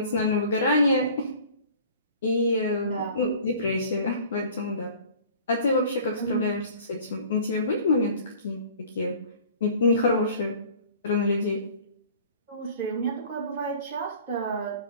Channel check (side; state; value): both; inverted; correlation -0.47